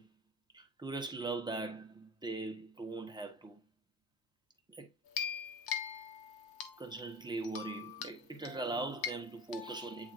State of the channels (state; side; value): normal; both; correlation 0.34